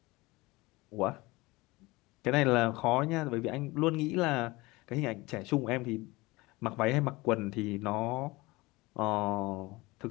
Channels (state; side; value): quieter; right; 22.1 dB